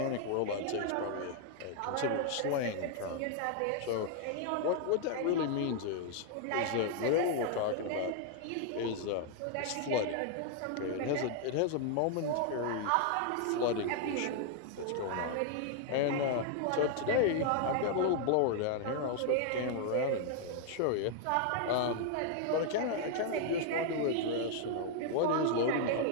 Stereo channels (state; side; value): different; both; correlation 0.00